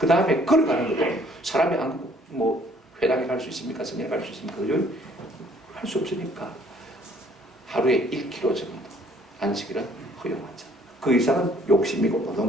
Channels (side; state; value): both; normal; correlation 0.60